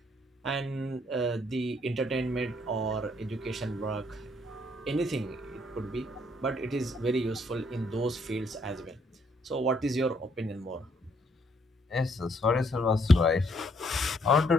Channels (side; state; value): both; normal; correlation 0.69